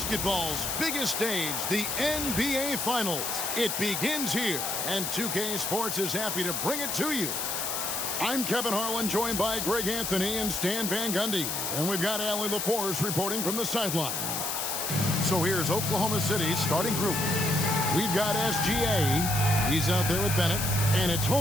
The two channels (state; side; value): noise; left; hiss, 2 dB below the sound